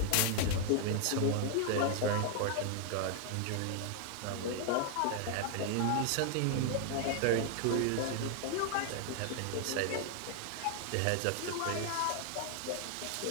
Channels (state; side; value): different; both; correlation 0.00